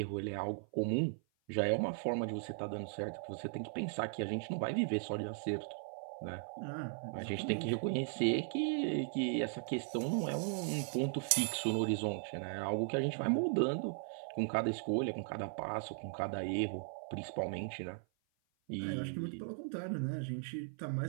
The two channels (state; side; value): silent; left; 53 dB below the other